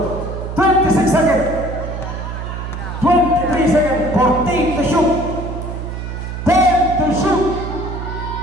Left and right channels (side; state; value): right; noise; hum, 6 dB below the sound